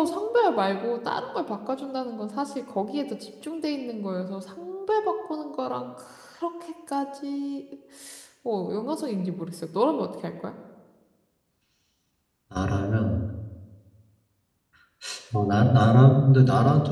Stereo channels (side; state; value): both; identical; correlation 1.00